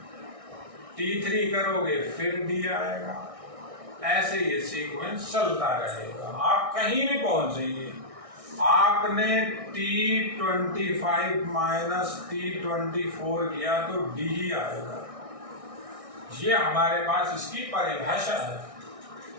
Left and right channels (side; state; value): left; late; 1.6 ms